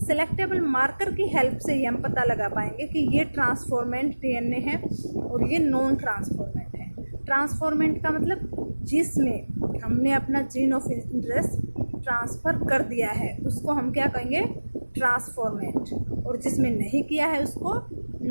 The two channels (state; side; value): inverted; both; correlation -1.00